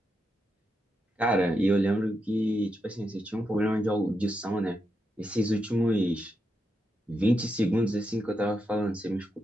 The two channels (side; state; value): both; normal; correlation 0.84